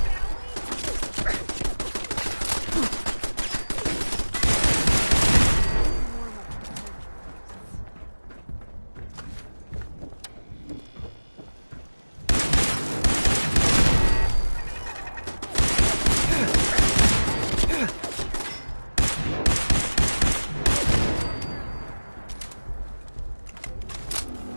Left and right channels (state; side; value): inverted; both; correlation -1.00